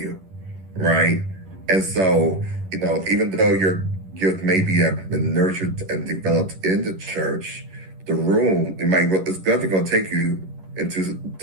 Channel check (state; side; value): late; left; 11 ms